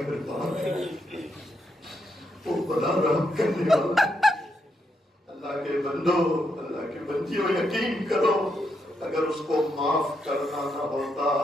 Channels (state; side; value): normal; both; correlation 0.80